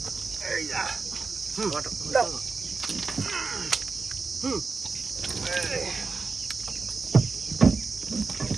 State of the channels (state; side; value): quieter; left; 4.5 dB